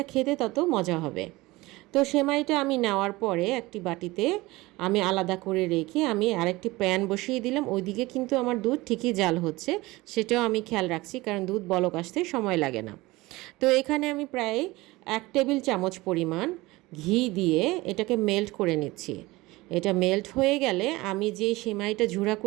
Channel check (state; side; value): quieter; left; 20.6 dB